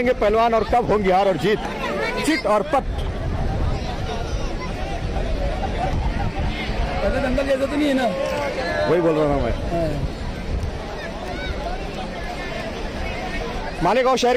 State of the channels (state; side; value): identical; both; correlation 1.00